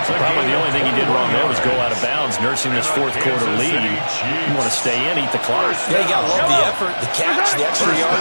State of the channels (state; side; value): inverted; both; correlation -1.00